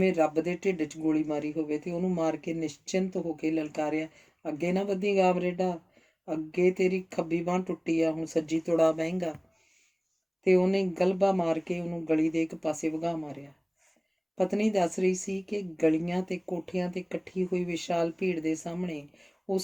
ਰੱਬ ਦੇ ਢਿੱਡ 'ਚ ਗੋਲੀ ਮਾਰੀ ਹੋਵੇ, ਤੇ ਉਹਨੂੰ ਮਾਰ ਕੇ ਨਿਸ਼ਚਿੰਤ ਹੋ ਕੇ ਲਲਕਾਰਿਆ, ਅੱਗੇ ਨਾ ਵਧੀ ਕਾਮਰੇਡਾ, ਅੱਗੇ ਤੇਰੀ ਖੱਬੀ ਬਾਂਹ ਟੁੱਟੀ ਆ, ਹੁਣ ਸੱਜੀ ਤੁੜਾ ਬਹਿੰਗਾ। ਤੇ ਉਹਨੇ ਗਲਬਾ ਮਾਰ ਕੇ ਉਹਨੂੰ ਗਲੀ ਦੇ ਇੱਕ ਪਾਸੇ ਵਗਾ ਮਾਰਿਆ। ਪਤਨੀ ਦੱਸ ਰਹੀ ਸੀ ਕਿ ਗਲੀਆਂ ਤੇ ਕੋਠਿਆਂ ਤੇ ਇਕੱਠੀ ਹੋਈ ਵਿਸ਼ਾਲ ਭੀੜ ਦੇ ਸਾਹਮਣੇ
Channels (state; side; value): identical; both; correlation 1.00